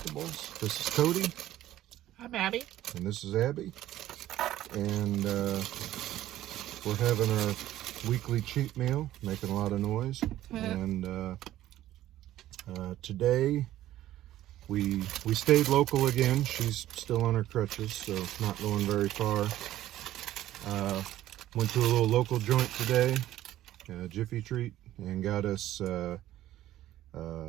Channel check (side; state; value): left; quieter; 13.8 dB